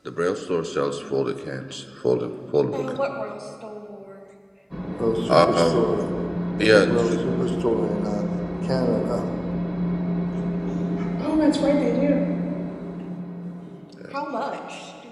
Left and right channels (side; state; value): both; identical; correlation 1.00